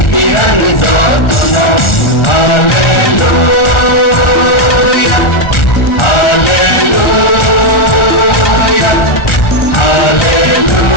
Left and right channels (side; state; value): right; late; 1.4 ms